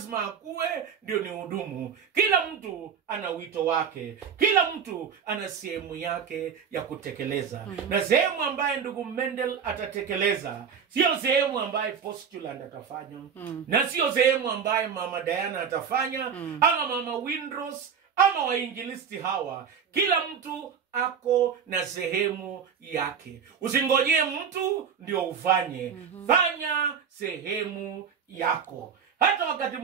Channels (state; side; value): quieter; left; 7.1 dB